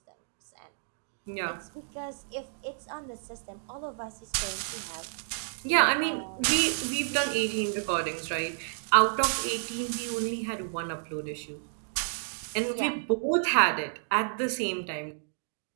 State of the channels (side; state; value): left; silent; digital silence